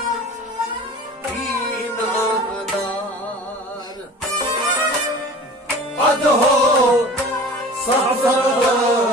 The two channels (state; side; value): normal; both; correlation 0.41